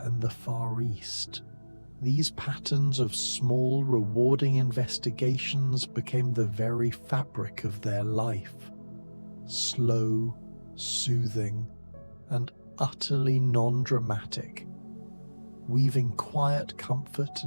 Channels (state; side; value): inverted; both; correlation -1.00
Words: and the Far East. These patterns of small, rewarding investigations became the very fabric of their life. Slow, soothing, and utterly non-dramatic, weaving quiet comfort